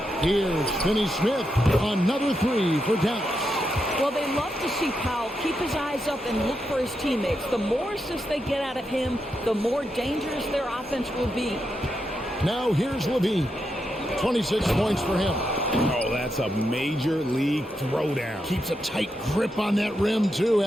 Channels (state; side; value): normal; both; correlation 0.84